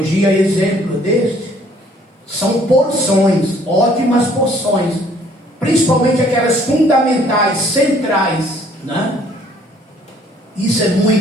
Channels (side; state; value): both; normal; correlation 0.60